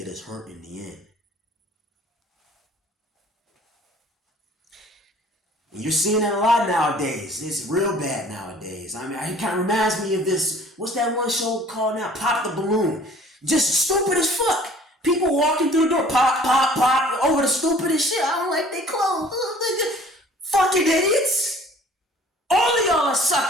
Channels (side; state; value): both; normal; correlation 0.51